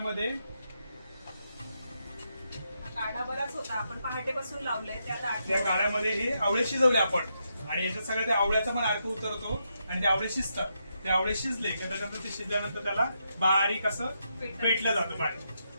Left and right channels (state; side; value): inverted; both; correlation -0.81